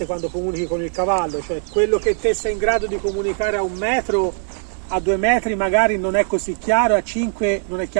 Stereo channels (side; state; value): left; silent; digital silence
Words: quando comunichi con il cavallo, cioè quello che te sei in grado di comunicare a 1 metro, a 2 metri magari non è così chiaro, a 5 non è